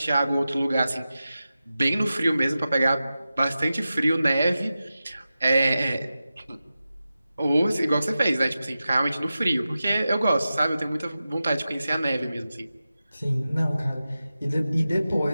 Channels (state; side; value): inverted; both; correlation -0.93